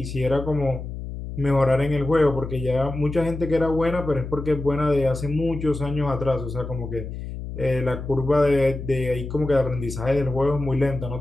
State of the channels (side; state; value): left; noise; hum, 8 dB below the sound